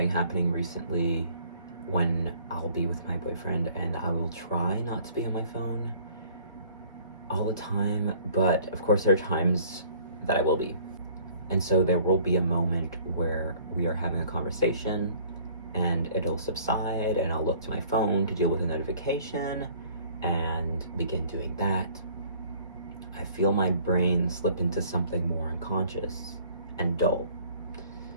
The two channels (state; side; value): inverted; both; correlation -0.54